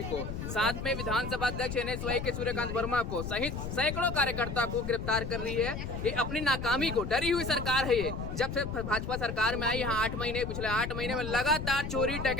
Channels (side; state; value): left; noise; rumble, 5 dB below the sound